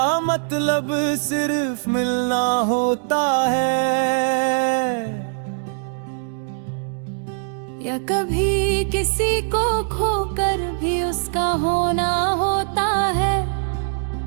मतलब सिर्फ मिलना होता है, या कभी किसी को खोकर भी उसका होना होता है।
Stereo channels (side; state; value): left; silent; digital silence